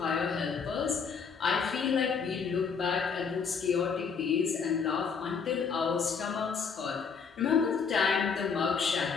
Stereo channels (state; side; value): quieter; right; 5.9 dB